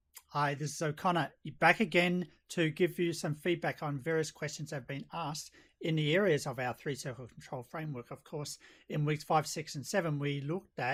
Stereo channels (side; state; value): both; identical; correlation 1.00